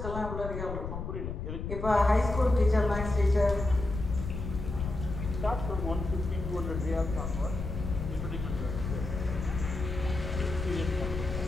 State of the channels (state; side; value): noise; left; rumble, 5 dB below the sound